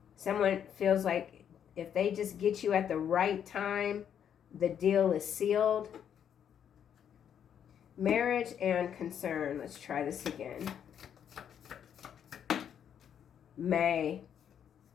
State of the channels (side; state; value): right; quieter; 8.8 dB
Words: Someone feels like if they just get you at the right time, the deal is sealed. Marriage and concern. Let's try this again. May.